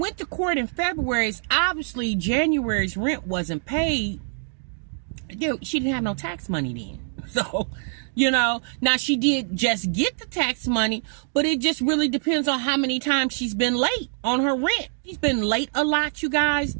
to court in February, obviously January's rent wasn't paid. She didn't have no tax money then. So, now she did just get the tax money, but it just really depends on how many times she's been late on her rent. She's been late a lot, you guys.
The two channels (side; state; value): left; silent; digital silence